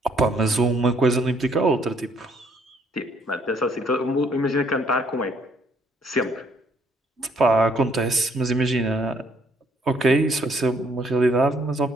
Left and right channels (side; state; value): both; normal; correlation 0.66